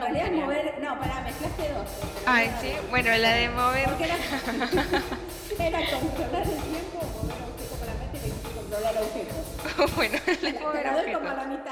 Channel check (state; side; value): identical; both; correlation 1.00